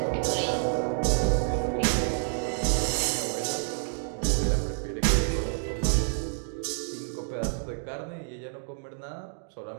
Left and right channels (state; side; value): silent; left; digital silence